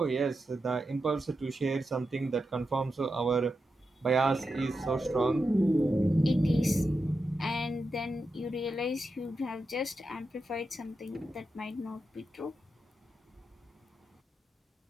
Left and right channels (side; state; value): both; normal; correlation 0.88